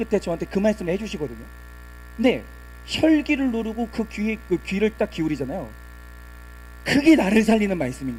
저한테 그 말씀을 해주시거든요. 근데 혈기를 누르고 그 귀를 딱 기울이잖아요. 그게 나를 살리는 말씀인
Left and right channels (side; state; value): both; identical; correlation 1.00